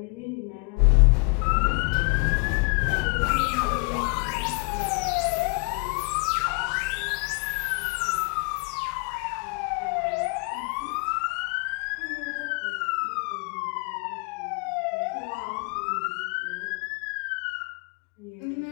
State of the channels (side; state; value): right; quieter; 33.7 dB